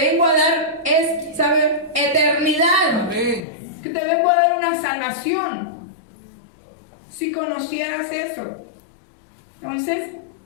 a dar, es, ¿sabe? Eternidad. Amén. Que te vengo a dar una salvación. Si conocieras eso. Entonces,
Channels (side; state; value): right; drops out; at 3.4 s